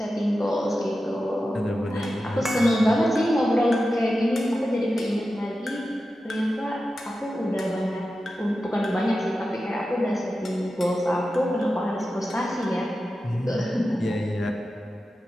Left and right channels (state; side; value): normal; both; correlation 0.92